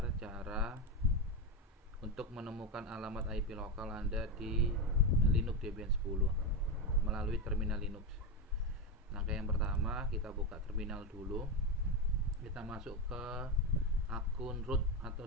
cara untuk menemukan alamat IP lokal Anda di Linux Debian 10 melalui terminal Linux. Langkah yang pertama, kita buka terminal dulu. Kita masuk ke akun root atau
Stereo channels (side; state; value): both; normal; correlation 0.11